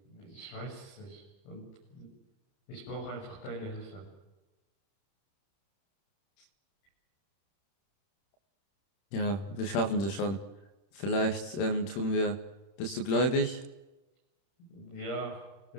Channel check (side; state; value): right; late; 31 ms